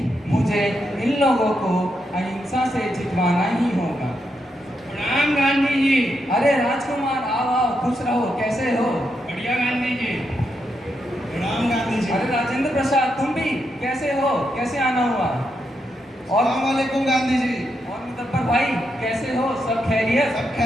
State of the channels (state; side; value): normal; both; correlation 0.82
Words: मुझे इन लोगों को अहिंसा से जितवाना ही होगा। प्रणाम गांधी जी। अरे राजकुमार, आओ आओ, खुश रहो, कैसे हो? बढ़िया गांधी जी। प्रणाम गांधी जी। अरे राजेंद्र प्रसाद, तुम भी कैसे हो? कैसे आना हुआ? और अस्सलामुअलैकुम गांधी जी। और मुदब्बर भाई कैसे हो? सब खैरियत? सब